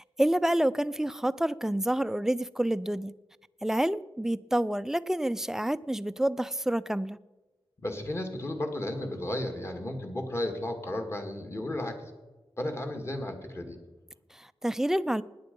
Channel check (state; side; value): normal; both; correlation 0.95